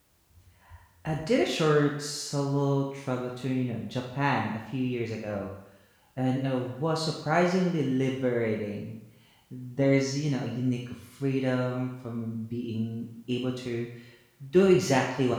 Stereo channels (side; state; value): both; identical; correlation 1.00